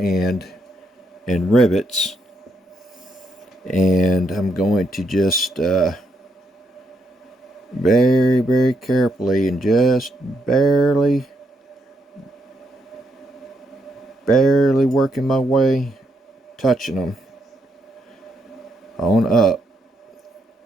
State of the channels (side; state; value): both; normal; correlation 0.77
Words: rivets, and I'm going to just very carefully and just barely working my way, touching them on up.